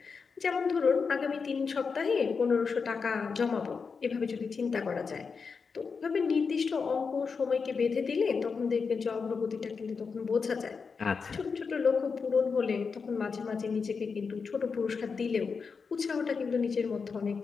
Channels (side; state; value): right; quieter; 5.3 dB